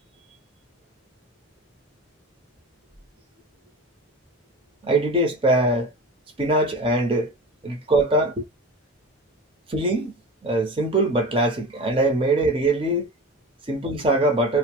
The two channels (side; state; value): both; normal; correlation 0.31